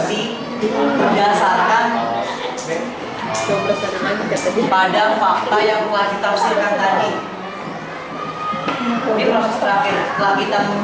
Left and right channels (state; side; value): identical; both; correlation 1.00